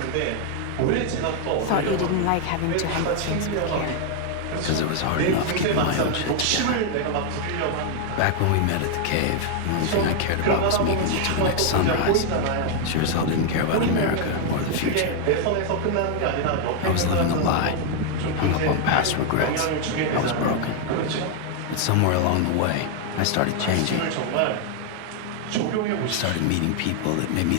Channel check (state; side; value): different; both; correlation 0.00